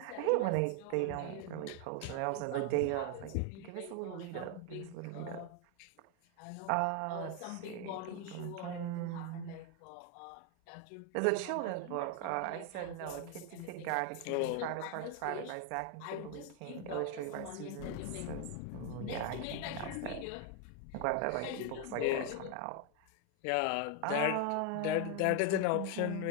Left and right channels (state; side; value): different; both; correlation 0.01